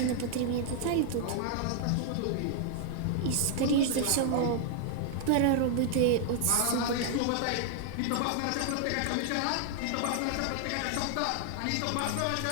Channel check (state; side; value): different; both; correlation 0.00